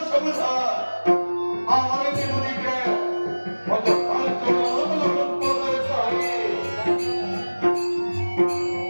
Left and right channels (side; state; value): both; inverted; correlation -1.00